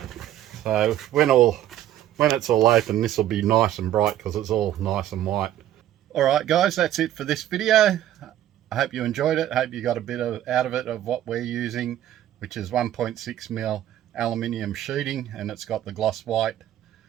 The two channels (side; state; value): left; quieter; 12.3 dB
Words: So when it's all open, this will be nice and bright because it's all nice and white. Alright guys, that's it for this video. I hope you enjoyed it. I hope you got a bit out of it of what we're using, which is 1.6mm aluminium sheeting, and it's got the gloss white